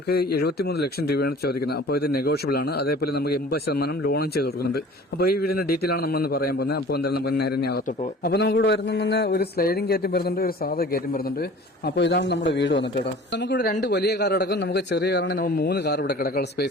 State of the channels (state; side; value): normal; both; correlation 0.45